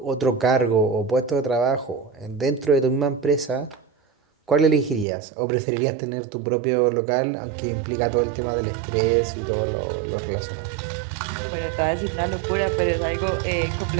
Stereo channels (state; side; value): drops out; left; at 5.1 s